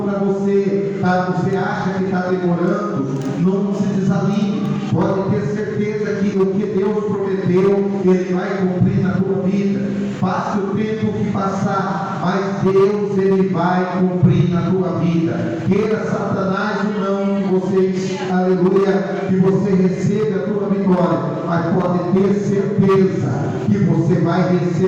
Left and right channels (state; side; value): identical; both; correlation 1.00